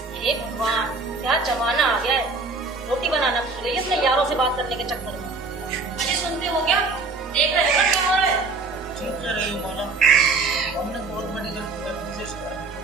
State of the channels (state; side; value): quieter; left; 3.8 dB